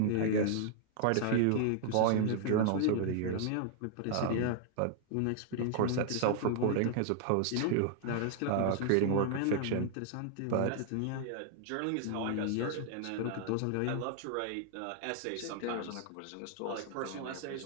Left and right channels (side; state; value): both; different; correlation 0.00